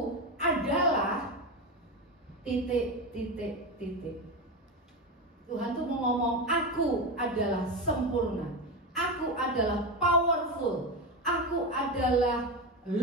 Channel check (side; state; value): both; normal; correlation 0.16